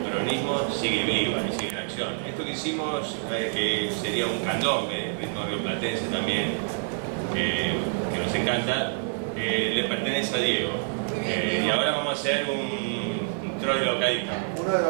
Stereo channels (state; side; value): silent; left; 59 dB below the other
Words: peronismo sigue viva y sigue en acción. Esto que hicimos, que sería un candombe, ritmo rioplatense también, que nos encanta, le pertenece a Diego. Y ahora vamos a hacer un troilo caído. Uno de